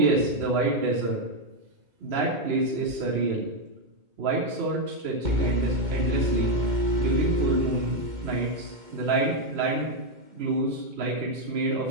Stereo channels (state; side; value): late; left; 2.2 ms